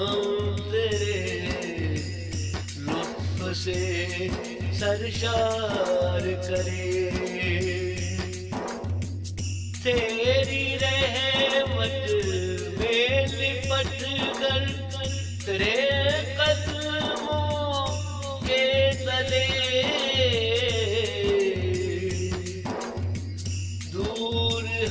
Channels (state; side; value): identical; both; correlation 1.00